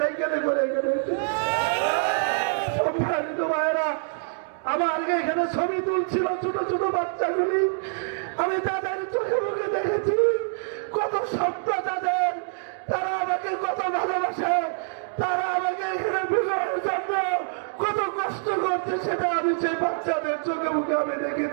করে এখানে এসেছি। সম্মানিত ভাইয়েরা, আমার আগে এখানে ছবি তুলছিল ছোট ছোট বাচ্চাগুলি, আমি তাদের চোখে মুখে দেখেছি কত স্বপ্ন তাদের, তারা আমাকে কত ভালোবাসে, তারা আমাকে এখানে বিজয়ের জন্য কত কষ্ট করছে, সেটা আমি সেই বাচ্চাদের চোখে মুখে আমি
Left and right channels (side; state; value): left; silent; digital silence